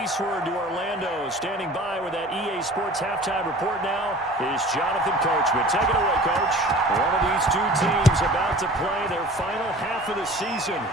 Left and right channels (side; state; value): both; normal; correlation 0.43